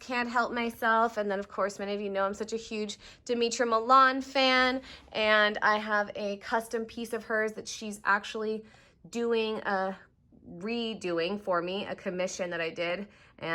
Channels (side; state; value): both; identical; correlation 1.00